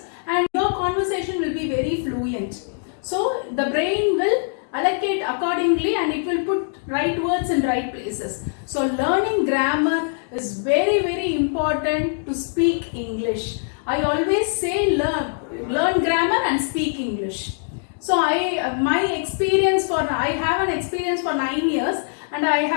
and your conversation will be very fluent. So the brain will allocate accordingly and it will put right words in right places. So learning grammar is very, very important to speak English. I always say learn grammar and speak English. So I have an experience for 9 years and I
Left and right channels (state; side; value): silent; right; digital silence